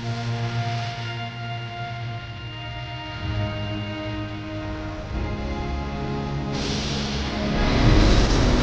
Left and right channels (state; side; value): identical; both; correlation 1.00